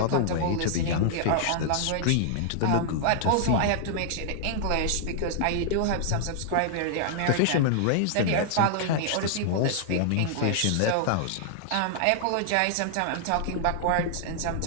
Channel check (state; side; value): different; both; correlation -0.01